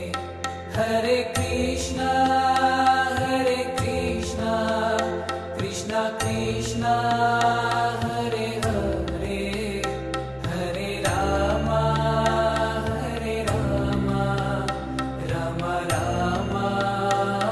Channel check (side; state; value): both; identical; correlation 1.00